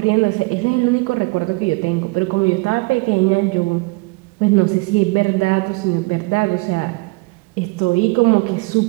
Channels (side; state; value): left; quieter; 25.9 dB